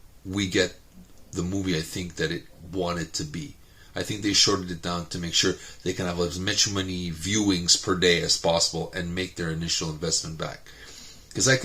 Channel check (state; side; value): identical; both; correlation 1.00